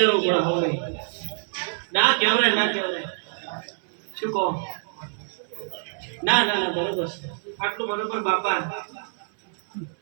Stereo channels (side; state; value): left; silent; 61 dB below the other